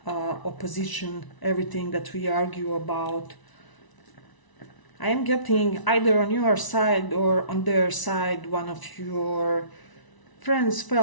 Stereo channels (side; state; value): right; late; 1.0 ms